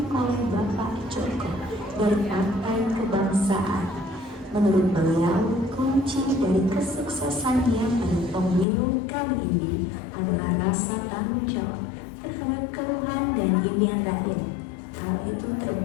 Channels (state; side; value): drops out; right; at 8.7 s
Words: oleh Bapak Joko dari Partai Kebangsaan. Menurut beliau, kunci dari kesuksesannya pada pemilu kali ini adalah rasa tanggung jawab terhadap keluhan dan impian rakyat. Hal itu